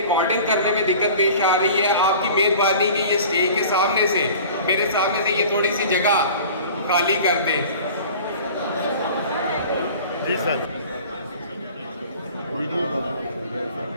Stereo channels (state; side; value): inverted; both; correlation -0.43